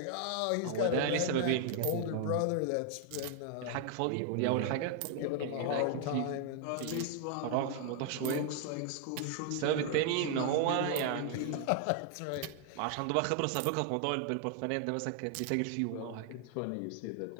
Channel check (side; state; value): both; different; correlation 0.00